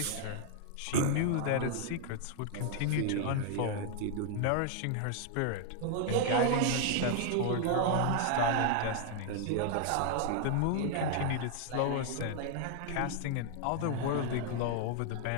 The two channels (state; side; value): different; both; correlation 0.00